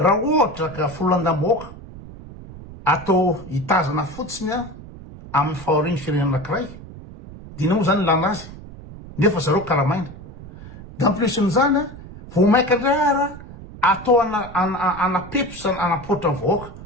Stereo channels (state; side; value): noise; right; rumble, 15 dB below the sound